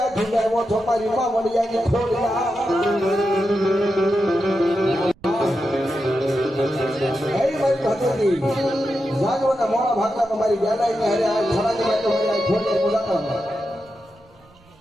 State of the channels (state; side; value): noise; right; rumble, 29 dB below the sound